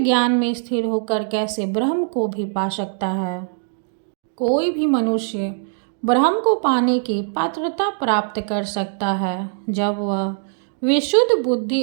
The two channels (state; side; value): silent; left; digital silence